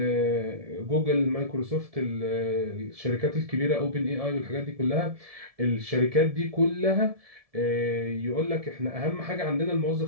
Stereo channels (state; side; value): late; left; 1.7 ms